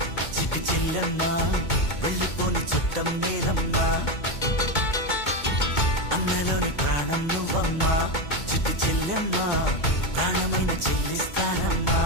చిట్టి చెల్లమ్మా వెళ్ళిపోని చుట్టం నేనమ్మా అందలోని ప్రాణం నువ్వమ్మా చిట్టి చెల్లమ్మా ప్రాణమైన చెల్లిస్తానమ్మా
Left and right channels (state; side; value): late; right; 2.2 ms